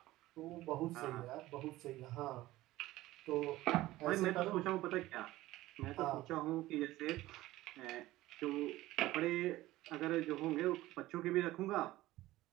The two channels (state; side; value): quieter; left; 16.9 dB